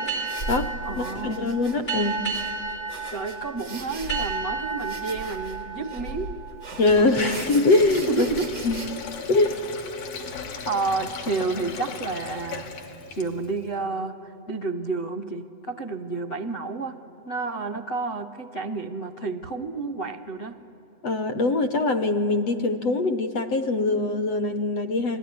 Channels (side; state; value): right; late; 8.0 ms